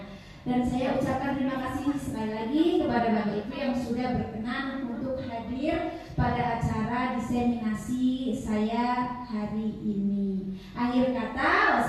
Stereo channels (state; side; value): identical; both; correlation 1.00